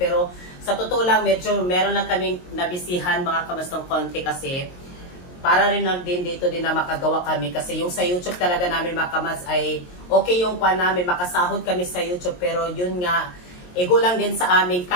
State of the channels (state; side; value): late; right; 22 ms